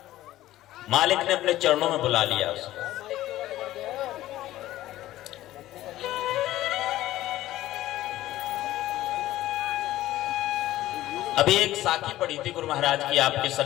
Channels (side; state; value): right; quieter; 15.0 dB